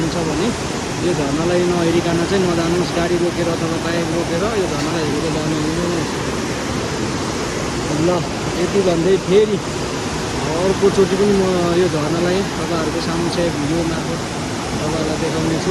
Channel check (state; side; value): identical; both; correlation 1.00